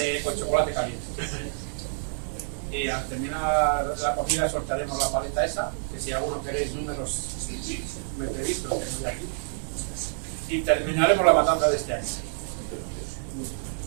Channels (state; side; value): silent; left; digital silence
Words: con chocolate caliente. Y al terminar la comida soltaremos la paleta esa, que si alguno queréis números me pedís, los tengo yo aquí. Y terminaremos la matanza de este año.